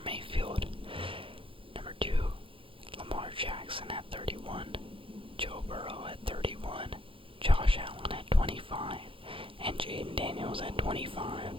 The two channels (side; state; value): left; late; 0.26 ms